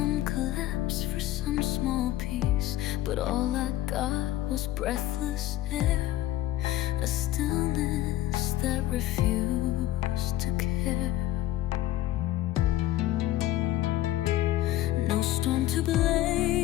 collapse, for some small peace. But all I got was breathless air, a stillness that refused to care. No storm to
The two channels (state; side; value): quieter; right; 14.7 dB